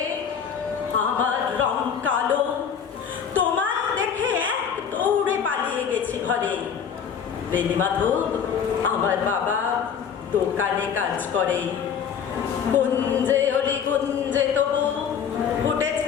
আমার রং কালো। তোমায় দেখে এক দৌড়ে পালিয়ে গেছি ঘরে। বেণীমাধব আমার বাবা দোকানে কাজ করে। কুঞ্জে অলি কুঞ্জে তবু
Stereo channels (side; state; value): right; quieter; 7.4 dB